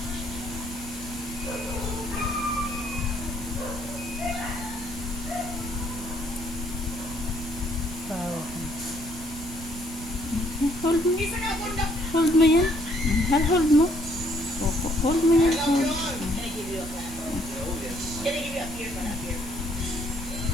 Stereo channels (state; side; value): noise; right; rumble, 13 dB below the sound